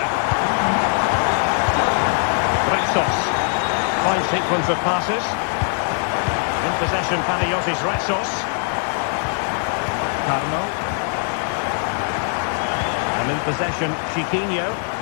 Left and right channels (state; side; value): silent; right; 58 dB below the other